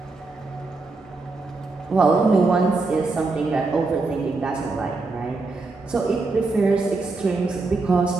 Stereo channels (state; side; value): quieter; left; 3.7 dB